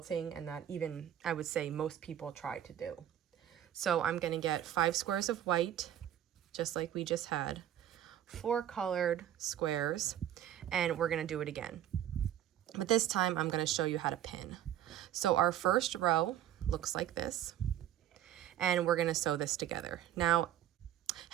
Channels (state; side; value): quieter; left; 11.2 dB